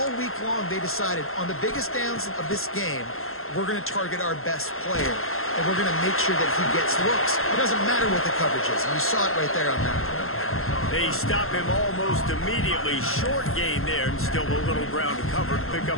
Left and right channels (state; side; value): late; right; 0.61 ms